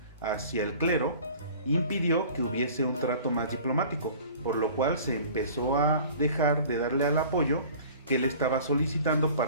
hacia el clero, impidió que hubiese un trato más diplomático, por lo cual se empezó a dejar de darle al apoyo que él estaba solicitando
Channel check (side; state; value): both; inverted; correlation -0.46